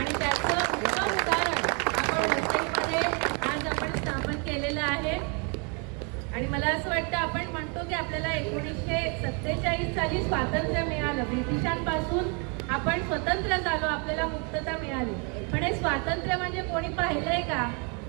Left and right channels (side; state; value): left; quieter; 35.1 dB